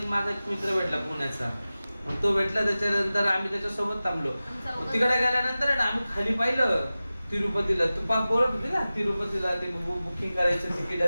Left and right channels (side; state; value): both; inverted; correlation -0.96